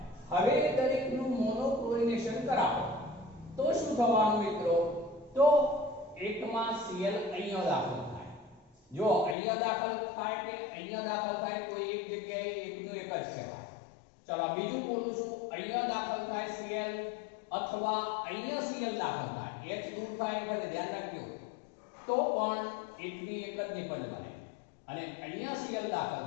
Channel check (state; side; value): drops out; right; at 9.3 s